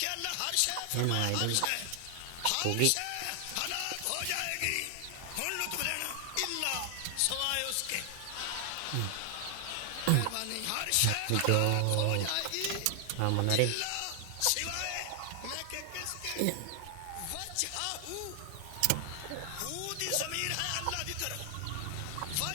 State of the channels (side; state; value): both; different; correlation 0.00